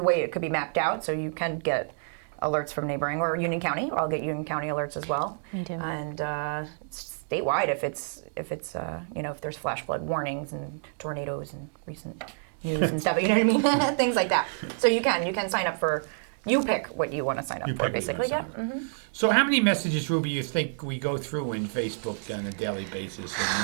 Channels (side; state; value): left; silent; digital silence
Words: way it could be mapped out, so you can get alerts from neighboring, or Union County. I'll get Union County alerts as well. Me too. And statewide, if there's flash flood warnings and tornadoes and recent news and stuff, you know what I mean? Things like that. So you can sign up for. You pick what you want to sign up for, basically. Yeah. Mm-hmm. So how many messages, Ruby, you think we go through in Facebook on a daily basis and